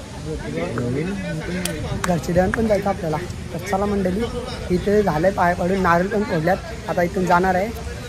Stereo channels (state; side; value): identical; both; correlation 1.00